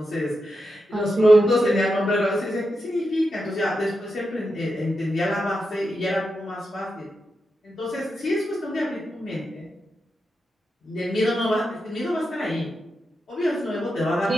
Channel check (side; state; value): both; normal; correlation 0.87